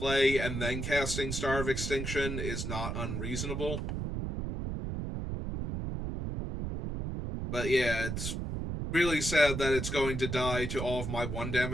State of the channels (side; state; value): right; noise; rumble, 3 dB below the sound